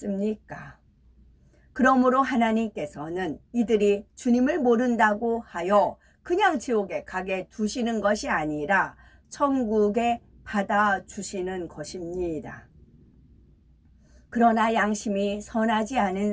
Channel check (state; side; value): identical; both; correlation 1.00